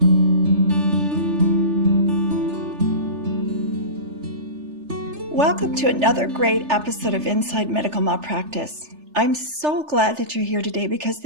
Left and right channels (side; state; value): left; late; 3.3 ms